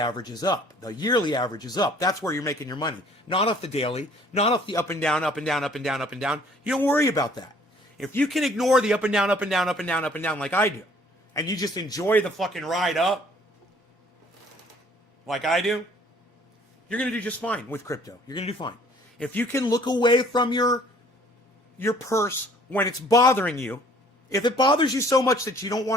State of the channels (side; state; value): both; normal; correlation 0.57